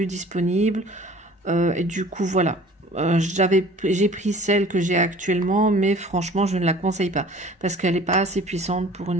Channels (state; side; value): normal; both; correlation 0.47